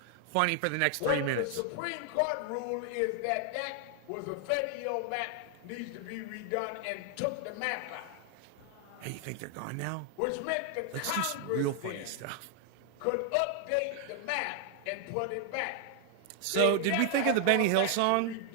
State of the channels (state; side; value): different; both; correlation 0.00